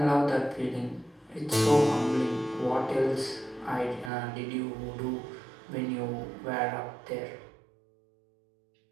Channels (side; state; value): left; drops out; at 4.1 s